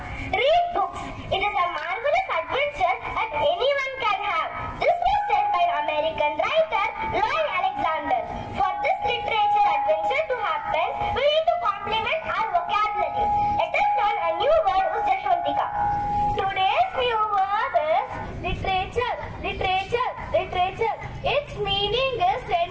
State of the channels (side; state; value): both; identical; correlation 1.00